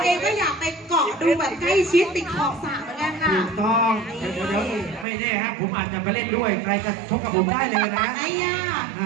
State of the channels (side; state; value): left; drops out; at 5.1 s